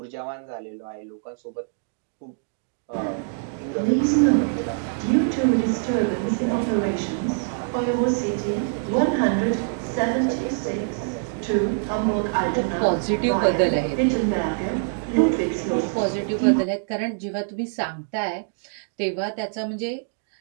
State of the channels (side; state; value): left; silent; digital silence